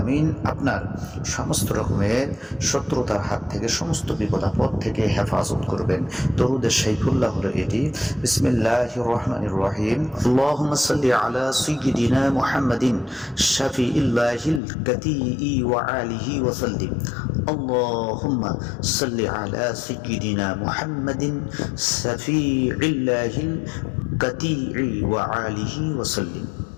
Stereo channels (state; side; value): drops out; right; at 14.6 s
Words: আপনার সমস্ত রকমের শত্রুতার হাত থেকে, সমস্ত বিপদ আপদ থেকে হেফাজত করবেন। দরুদে শাইখুল্লাহ হলো এটি। বিসমিল্লাহির রহমানির রহিম। আল্লাহুম্মা সাল্লি আলা সাইয়্যিদিনা মুহাম্মাদিন শাফিইল্লাহিল কাতিই ওয়া আলিহি ওয়া সাল্লিম। আল্লাহুম্মা সাল্লি আলা সাইয়্যিদিনা মুহাম্মাদিন শাফিইল্লাহিল কাতিই ওয়া আলিহি ওয়া সাল্লিম।